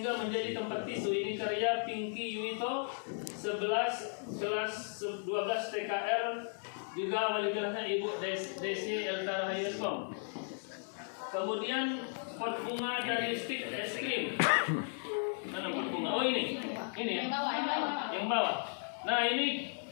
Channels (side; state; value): right; silent; 54 dB below the other